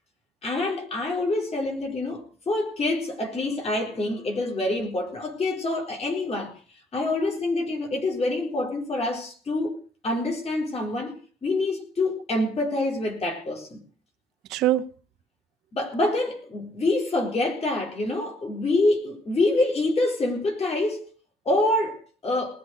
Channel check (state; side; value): normal; both; correlation 0.67